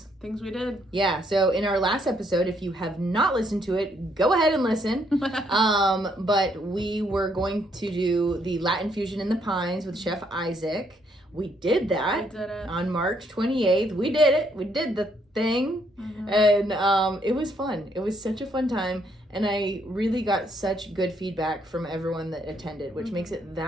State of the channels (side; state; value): both; normal; correlation 0.71